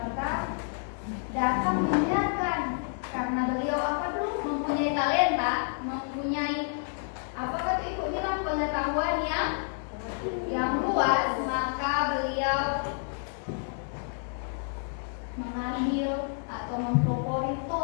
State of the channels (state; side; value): silent; right; 58 dB below the other